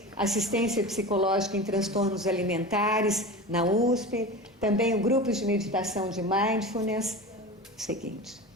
assistência psicológica em transtornos alimentares na USP, também o grupo de meditação de mindfulness. Seguinte,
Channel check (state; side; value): normal; both; correlation 0.30